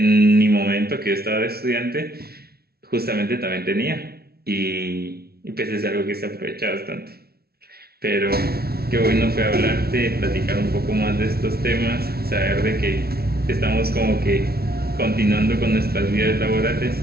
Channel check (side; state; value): left; late; 0.45 ms